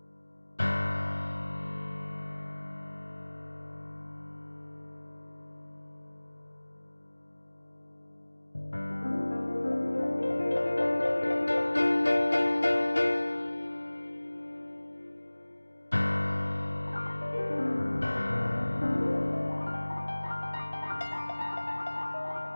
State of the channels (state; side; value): inverted; both; correlation -1.00